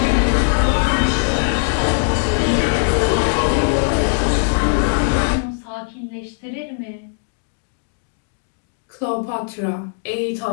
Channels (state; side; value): silent; right; digital silence